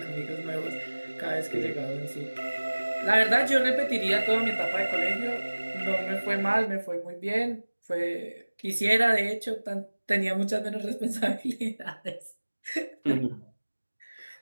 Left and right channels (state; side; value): inverted; both; correlation -1.00